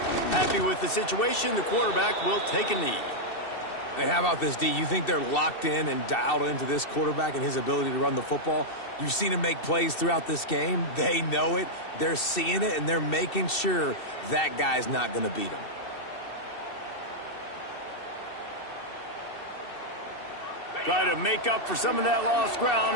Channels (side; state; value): right; late; 2.7 ms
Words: Happy with the situation, the quarterback will take a knee. Hey, how about this, D? You think they're locked in and dialed into this quarterback and his ability to run the football? You've seen him make plays throughout this game. They know it. They're seeing it, and they're making sure that guy's not going to beat him. Try to make up for some of that lost